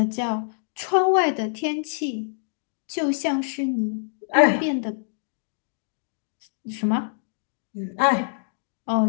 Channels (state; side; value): silent; right; digital silence